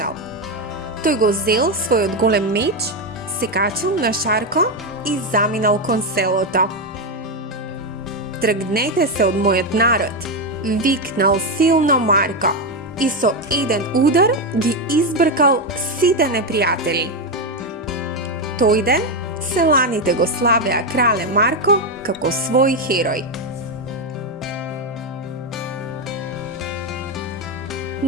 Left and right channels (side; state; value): both; normal; correlation 0.08